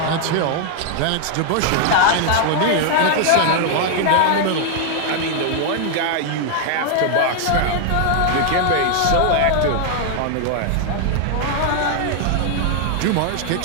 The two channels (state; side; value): different; both; correlation 0.00